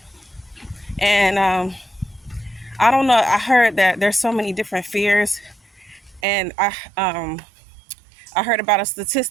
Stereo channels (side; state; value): left; drops out; at 6.2 s